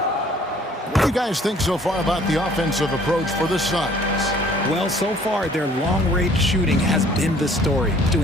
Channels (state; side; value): normal; both; correlation 0.56